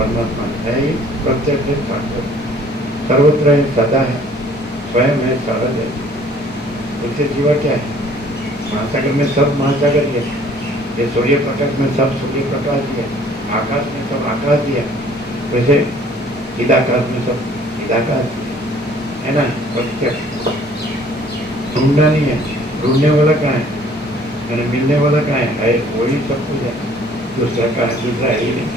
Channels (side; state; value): both; normal; correlation 0.55